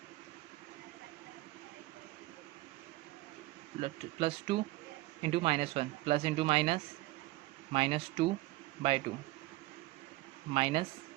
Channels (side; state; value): left; quieter; 18.9 dB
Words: plus 2 into minus 1 plus into minus, minus 2 by 2 minus